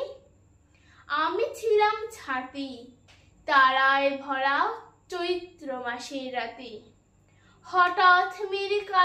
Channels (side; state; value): both; identical; correlation 1.00